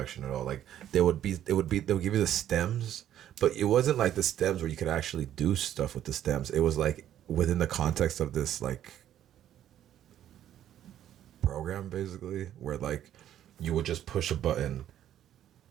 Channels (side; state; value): left; quieter; 11.2 dB